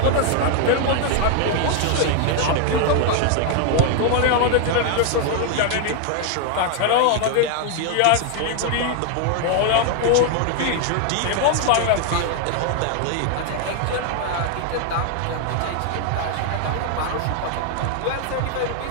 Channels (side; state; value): both; different; correlation 0.00